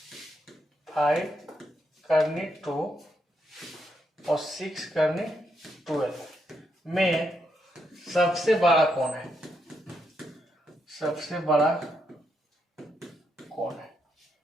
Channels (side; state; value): both; normal; correlation 0.80